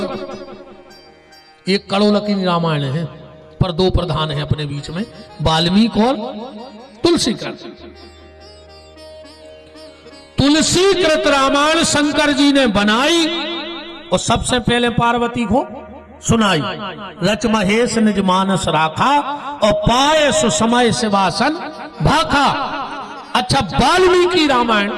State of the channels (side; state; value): both; identical; correlation 1.00